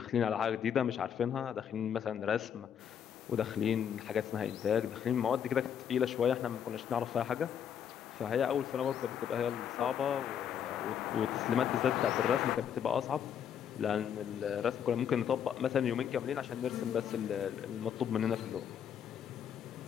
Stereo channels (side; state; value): right; quieter; 8.6 dB